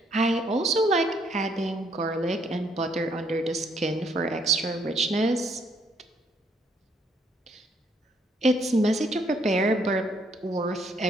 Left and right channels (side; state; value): both; normal; correlation 0.69